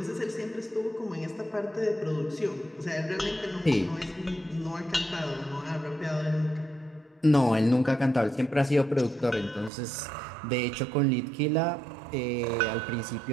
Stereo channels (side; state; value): left; drops out; at 9.7 s